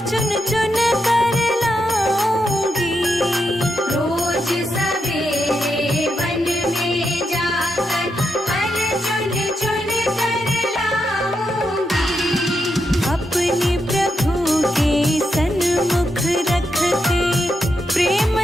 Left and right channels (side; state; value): both; normal; correlation 0.83